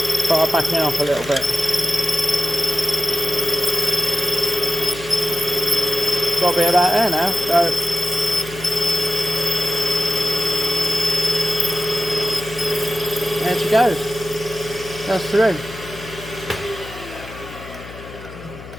Start backing off a little bit. Got a bit of that there now, so there she goes. That's through.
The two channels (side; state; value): left; noise; hum, 15 dB below the sound